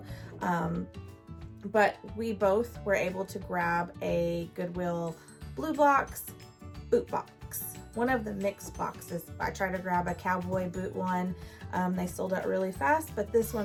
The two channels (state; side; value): identical; both; correlation 1.00